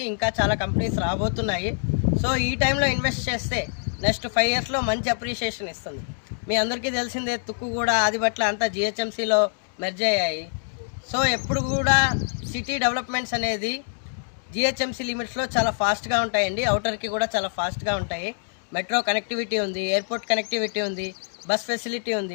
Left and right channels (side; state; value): right; silent; digital silence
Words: ఇంకా చాలా కంపెనీస్ రాబోతున్నాయి. సో ఈ టైంలో ఇన్వెస్ట్ చేస్తే నెక్స్ట్ 5 ఇయర్స్లో మంచి అప్రిషియేషన్ ఇస్తుంది. మీ అందరికీ తెలిసిందే, తుక్కుగూడ, ఆదిబట్ల అంతా జిహెచ్ఎంసీలో మెర్జ్ అయ్యాయి. సో ఎప్పుడు కూడా సిటీ డెవలప్మెంట్స్ అనేది జిహెచ్ఎంసీ లిమిట్స్లో చాలా ఫాస్ట్గా ఉంటాయండి. అవుటర్కి కూడా చాలా ఫాస్ట్గా ఉంటాయి. మెట్రో కనెక్టివిటీ ఉంది, ఎయిర్పోర్ట్ కనెక్టివిటీ ఉంది, బస్ ఫెసిలిటీ